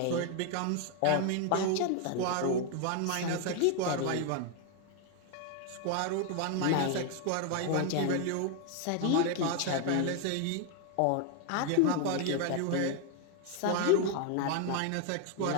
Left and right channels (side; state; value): both; different; correlation 0.00